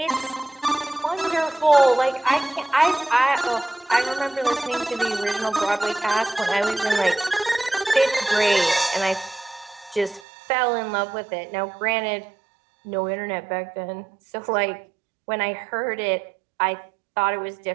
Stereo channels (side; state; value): left; drops out; at 10.2 s